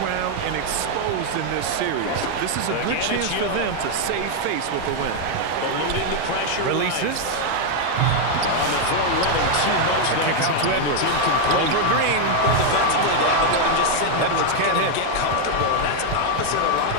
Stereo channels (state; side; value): different; both; correlation 0.01